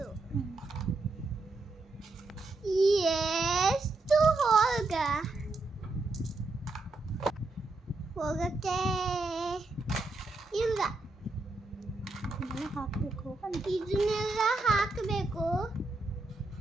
ಎಷ್ಟು ಹೋಗಕ್ಕೆ ಇಲ್ಲ. ಇದನ್ನೆಲ್ಲ ಹಾಕಬೇಕು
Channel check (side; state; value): left; quieter; 3.2 dB